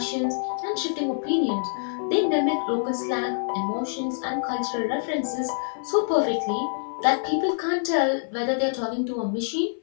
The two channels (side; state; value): right; silent; 56 dB below the other